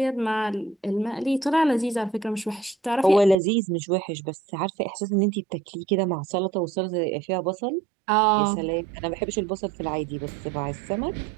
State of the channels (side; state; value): left; drops out; at 3.4 s